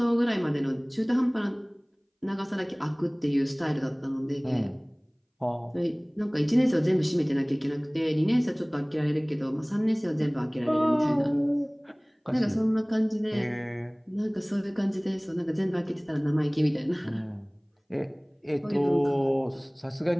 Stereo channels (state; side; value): identical; both; correlation 1.00